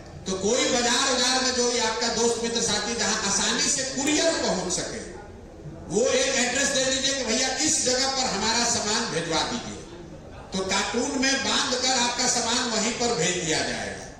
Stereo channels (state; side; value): identical; both; correlation 1.00